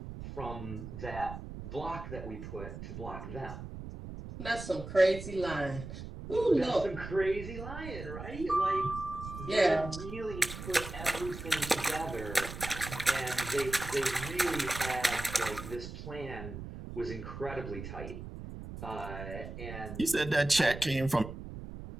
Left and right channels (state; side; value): noise; right; rumble, 9 dB below the sound